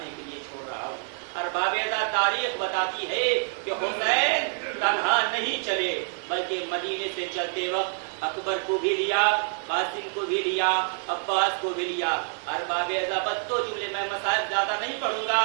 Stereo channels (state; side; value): silent; left; 60 dB below the other